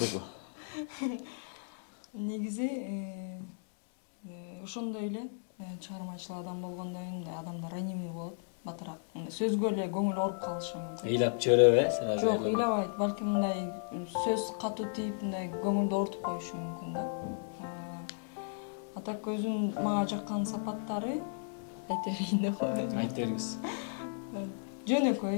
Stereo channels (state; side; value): silent; right; digital silence